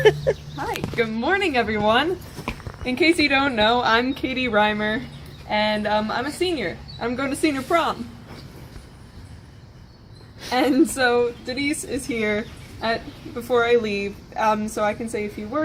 Hi. Good morning, everyone. In case you don't know, I'm Katie Reimer, and I'm a senior. I'm going to senior prom. And so Denise is here before I leave, so I can say a few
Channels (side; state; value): both; identical; correlation 1.00